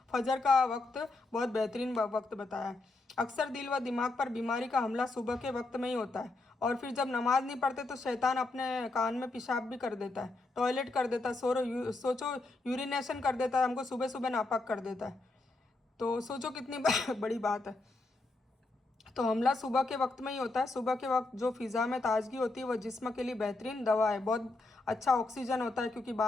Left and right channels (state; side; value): quieter; right; 3.2 dB